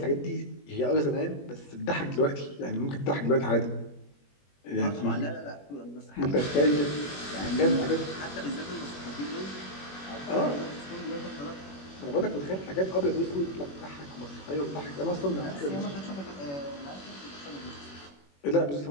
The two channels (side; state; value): right; late; 21 ms